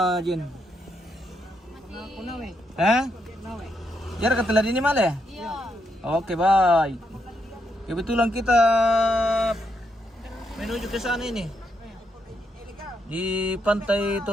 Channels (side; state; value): both; normal; correlation 0.79